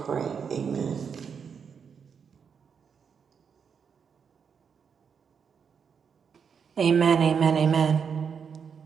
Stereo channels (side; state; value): left; quieter; 6.7 dB